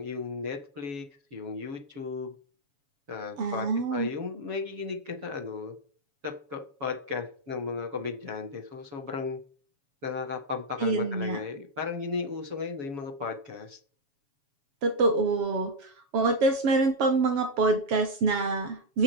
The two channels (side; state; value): left; late; 7.2 ms